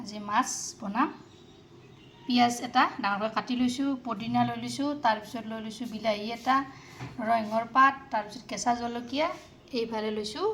আজি মাছ বনাম। পিঁয়াজ এটা ডাঙৰকৈ কাটি লৈছোঁ, পদিনা লৈ লৈছোঁ, তাৰপিছত লৈ লৈছোঁ বিলাহী এটা, নৰসিংহৰ পাত, তাৰপিছত কেঁচা জলকীয়া, এইফালে লৈছোঁ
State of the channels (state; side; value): identical; both; correlation 1.00